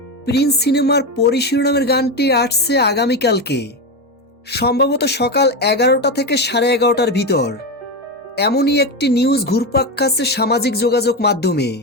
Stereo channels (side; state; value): both; normal; correlation 0.15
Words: প্রিন্স সিনেমার পরি শিরোনামের গানটি আসছে আগামীকালকে, সম্ভবত সকাল 11টা থেকে 11:30টার ভিতর। এমনই একটি নিউজ ঘুরপাক খাচ্ছে সামাজিক যোগাযোগ মাধ্যমে।